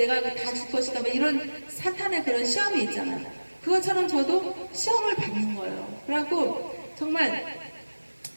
다 줄 것이다 뭐 이런 사탄의 그런 시험이 있잖아요. 그것처럼 저도 시험을 받는 거예요. 그래갖고 정말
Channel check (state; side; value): inverted; both; correlation -1.00